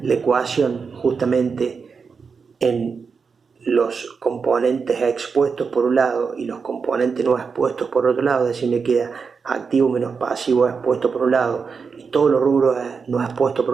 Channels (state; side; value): quieter; left; 5.4 dB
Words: la ecuación justamente en los componentes expuestos por un lado y los componentes no expuestos por otro lado, es decir, me queda activo menos pasivo expuesto por un lado y todos los rubros no expuestos por